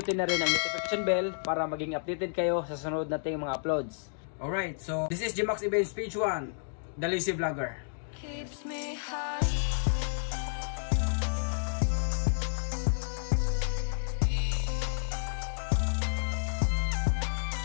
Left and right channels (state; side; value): silent; right; digital silence